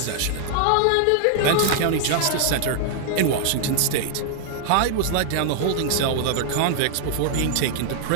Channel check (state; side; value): different; both; correlation 0.00